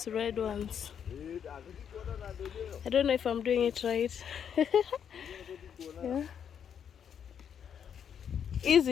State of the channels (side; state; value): right; quieter; 8.2 dB